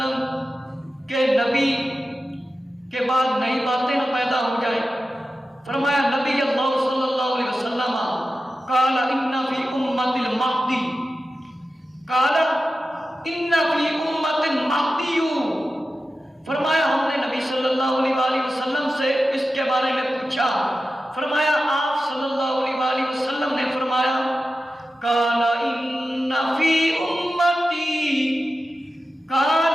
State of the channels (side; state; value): both; normal; correlation 0.93